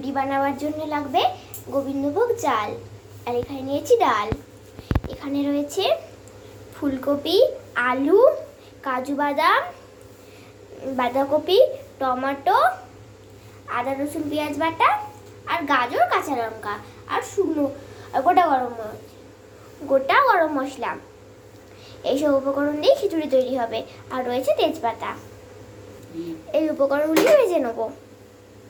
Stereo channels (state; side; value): identical; both; correlation 1.00